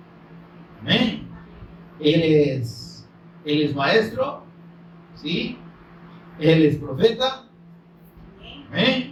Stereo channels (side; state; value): both; identical; correlation 1.00